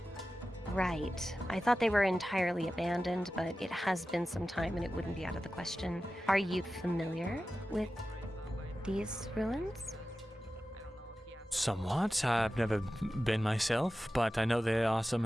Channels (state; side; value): normal; both; correlation 0.94